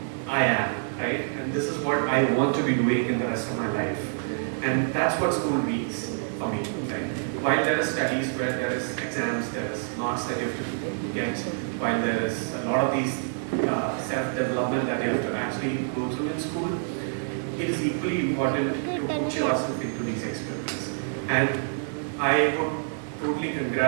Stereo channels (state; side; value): silent; left; digital silence